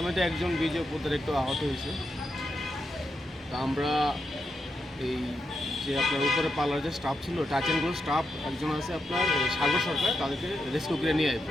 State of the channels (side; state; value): both; normal; correlation 0.85